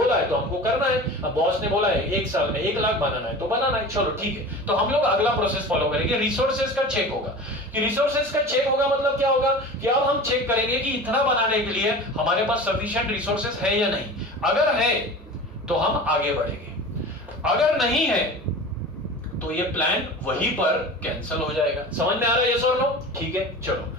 है तो हमको करना है। अब बॉस ने बोला है 1 साल में 1 लाख बनाना है तो बनाना है, चलो ठीक है। तो हम लोग अगला प्रोसेस फॉलो करेंगे, रिसोर्सेज का चेक होगा। कि रिसोर्सेज का चेक होगा मतलब क्या होगा कि अब हम चेक करेंगे कि इतना बनाने के लिए हमारे पास सफिशिएंट रिसोर्सेज है या नहीं। अगर है तो हम आगे बढ़ेंगे, अगर नहीं है तो ये प्लान वहीं पर कैंसिल हो जाएगा। समझ में आ रहा है यस और नो? ठीक है, चलो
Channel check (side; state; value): both; normal; correlation 0.35